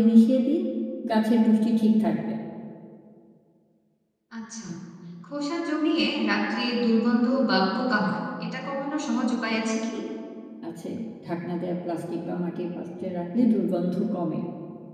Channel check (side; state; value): both; identical; correlation 1.00